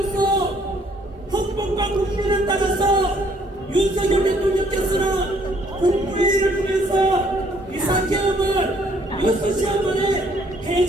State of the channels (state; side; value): normal; both; correlation 0.64